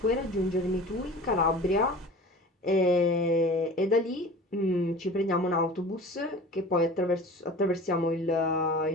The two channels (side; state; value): both; normal; correlation 0.39